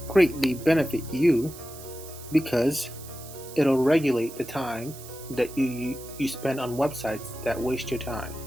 greatly benefit you because it'll regulate the time that you spend on websites that waste your time.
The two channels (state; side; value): noise; right; hiss, 16 dB below the sound